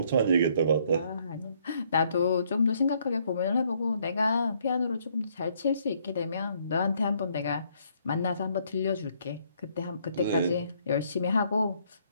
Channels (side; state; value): both; inverted; correlation -0.68